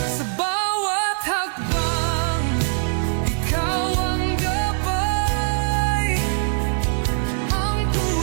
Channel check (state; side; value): silent; left; 64 dB below the other